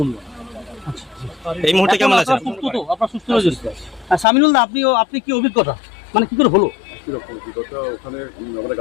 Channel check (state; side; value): drops out; right; at 4.2 s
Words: এই মুহূর্তে কেমন আছেন? সুস্থ তো? আপনার সুস্থ হয়েছে? সামিনুল দা, আপনি কি অভিজ্ঞতা, মানে কি করে হলো? কিরকম অভিজ্ঞতা? ওখানে আমরা